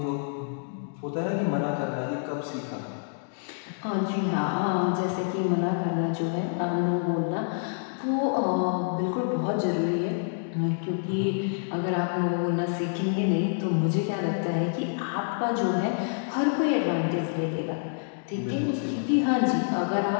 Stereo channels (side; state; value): right; silent; digital silence